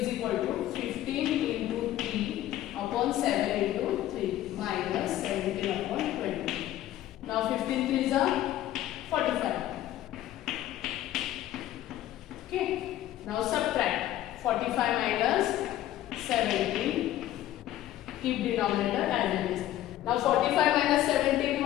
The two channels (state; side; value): quieter; right; 13.5 dB